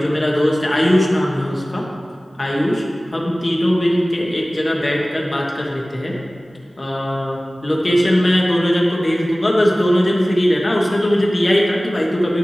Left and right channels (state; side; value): normal; both; correlation 0.98